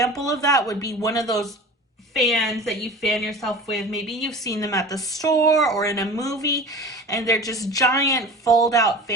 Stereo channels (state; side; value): normal; both; correlation 0.37